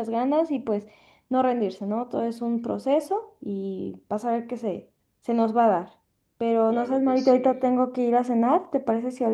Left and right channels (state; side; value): identical; both; correlation 1.00